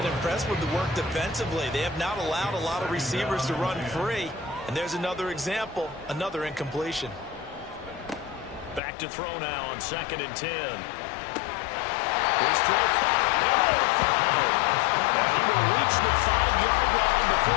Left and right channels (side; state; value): right; drops out; at 8.8 s